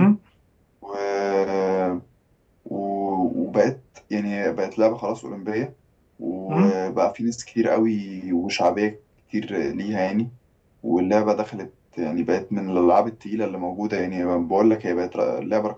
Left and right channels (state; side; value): identical; both; correlation 1.00